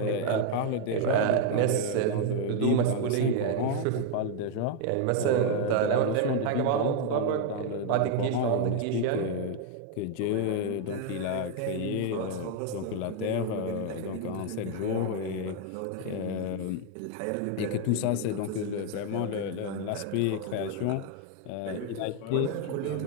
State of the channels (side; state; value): both; different; correlation 0.00